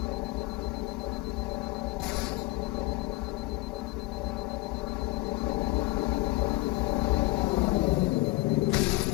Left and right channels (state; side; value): quieter; right; 20.3 dB